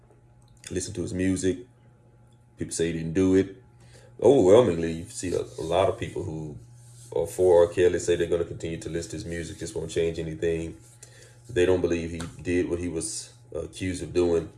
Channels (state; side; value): identical; both; correlation 1.00